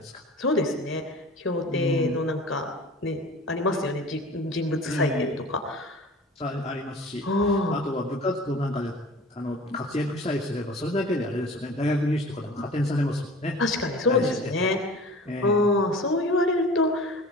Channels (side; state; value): both; normal; correlation 0.41